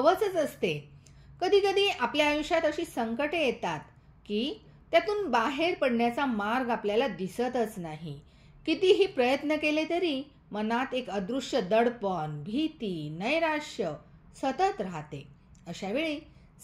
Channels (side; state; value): both; identical; correlation 1.00